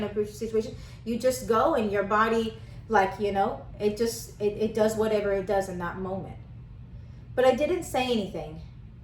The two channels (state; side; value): identical; both; correlation 1.00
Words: to approach the situation. You just go, and your body Like, it does whatever it does in that moment. But I didn't say anything.